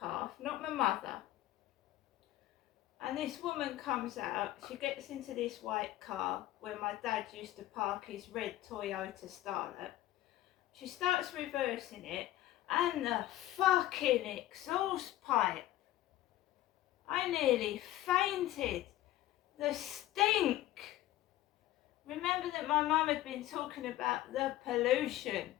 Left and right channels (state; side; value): quieter; right; 14.9 dB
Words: not my mother. And this woman comes out, she gets into this white car where my dad used to park his red Toyota Starlet. She starts reversing it, and the fucking exhaust pipe. I nearly fainted. The stink. Remember that my mum had been talking about the pollution.